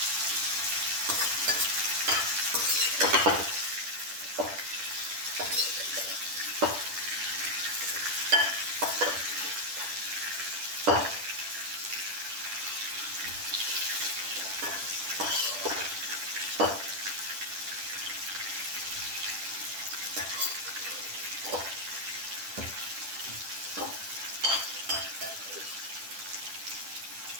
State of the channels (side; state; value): left; late; 10 ms